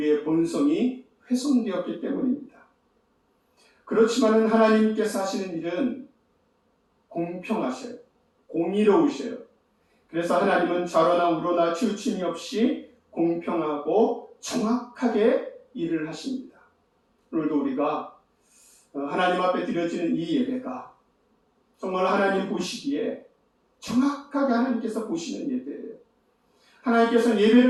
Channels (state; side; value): identical; both; correlation 1.00